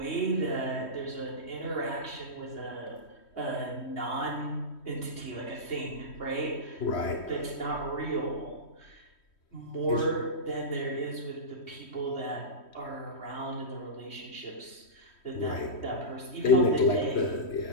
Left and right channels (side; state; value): right; late; 3.1 ms